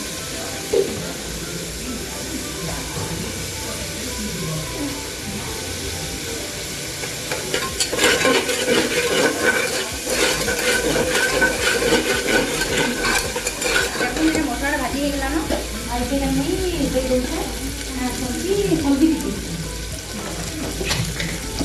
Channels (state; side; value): identical; both; correlation 1.00